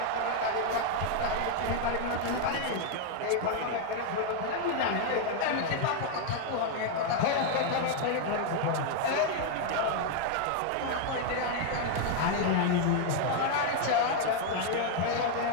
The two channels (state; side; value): different; both; correlation 0.00